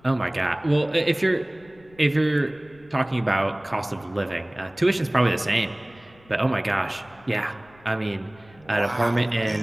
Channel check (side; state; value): left; noise; rumble, 27 dB below the sound